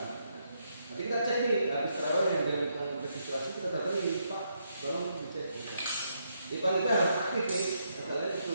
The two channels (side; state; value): both; inverted; correlation -0.77